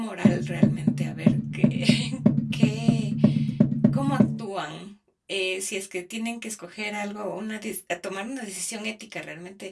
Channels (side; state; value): both; identical; correlation 1.00